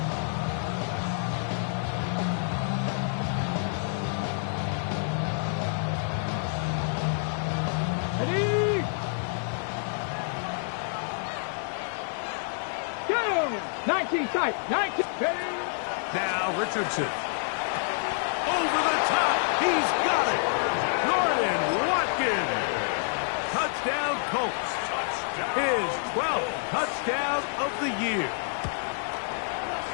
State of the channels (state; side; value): silent; right; digital silence